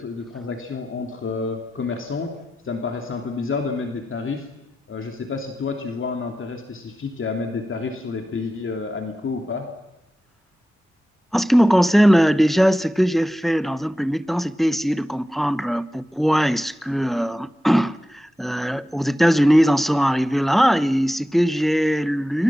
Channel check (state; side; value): normal; both; correlation 0.93